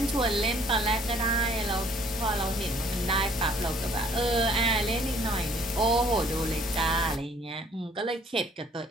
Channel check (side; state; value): both; normal; correlation 0.59